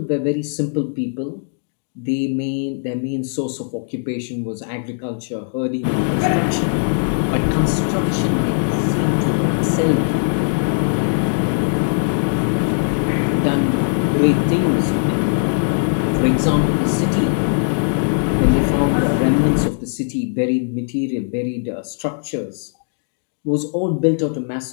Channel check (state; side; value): silent; right; digital silence